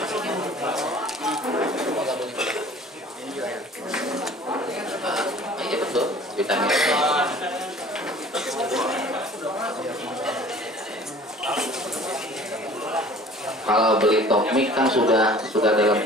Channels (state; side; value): normal; both; correlation 0.48